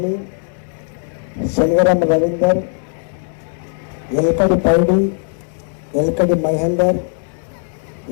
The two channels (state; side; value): silent; right; 67 dB below the other